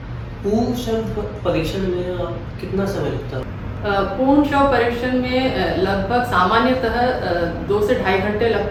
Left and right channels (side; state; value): both; identical; correlation 1.00